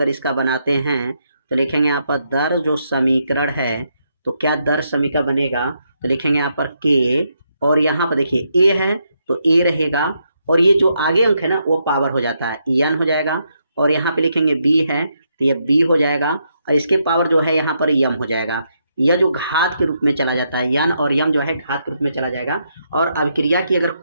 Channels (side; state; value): both; inverted; correlation -0.79